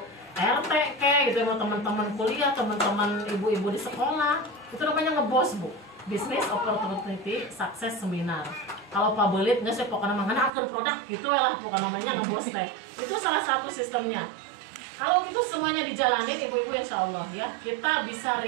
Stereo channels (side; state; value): left; drops out; at 10.5 s